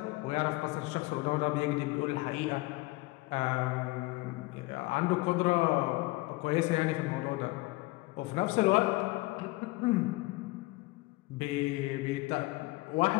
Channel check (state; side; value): quieter; right; 21.9 dB